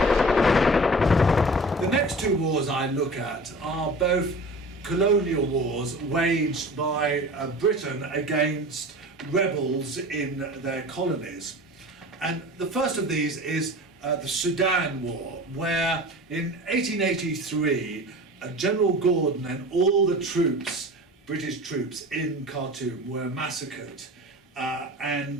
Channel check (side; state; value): both; normal; correlation 0.38